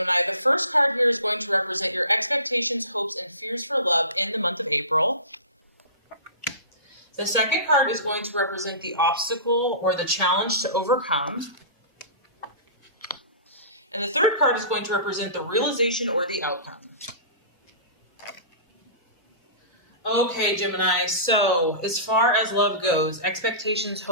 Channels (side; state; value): both; inverted; correlation -0.34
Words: the first card here is going to represent your expectations, hopes, and fears for love in the month of April. The second card is going to represent the obstacle or the challenge to overcome. And the third card is going to represent the realization or the outcome. Okay, Gemini, so as far as love goes, expectations,